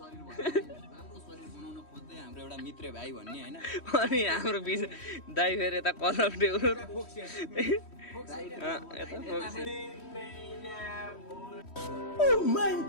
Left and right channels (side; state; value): right; late; 3.1 ms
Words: बनाउन खोज्दै हाम्रो एउटा मित्र भाइ भन्ने हैन अनि हाम्रो दाइ फेरि यता कलर टेउरो